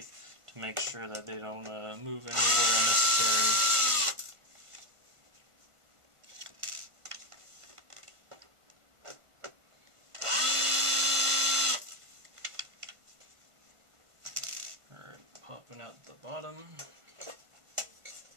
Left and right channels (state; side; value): late; left; 1.5 ms